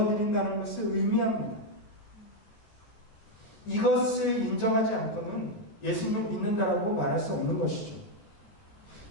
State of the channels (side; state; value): right; late; 14 ms